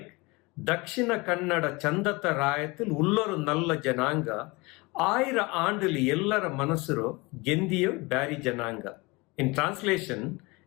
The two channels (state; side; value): quieter; right; 25.0 dB